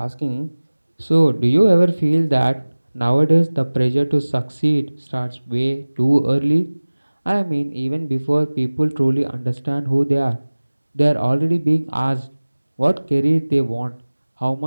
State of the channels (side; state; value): both; inverted; correlation -1.00